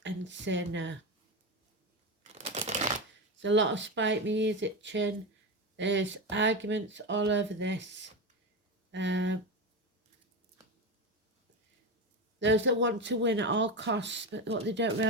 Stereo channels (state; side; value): normal; both; correlation 0.18